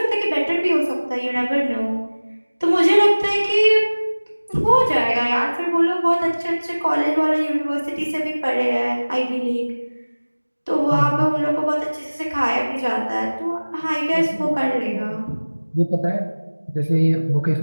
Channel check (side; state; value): both; inverted; correlation -1.00